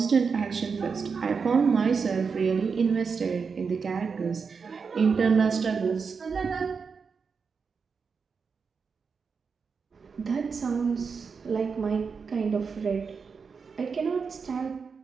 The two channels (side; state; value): left; quieter; 5.5 dB